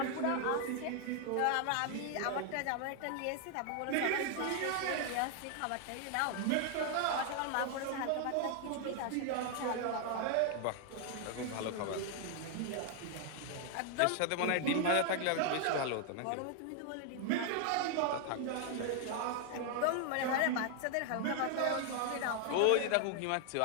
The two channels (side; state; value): both; different; correlation 0.00